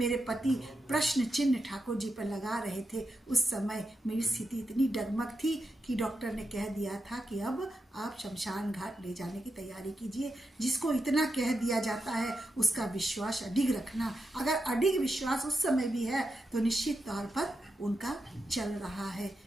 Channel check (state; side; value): normal; both; correlation 0.87